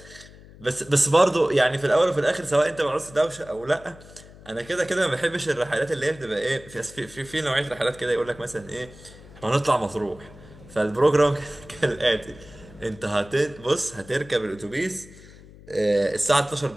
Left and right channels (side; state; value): left; noise; hum, 20 dB below the sound